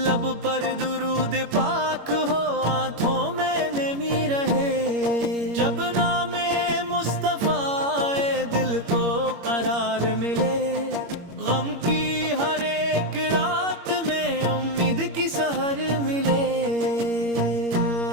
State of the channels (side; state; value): left; late; 21 ms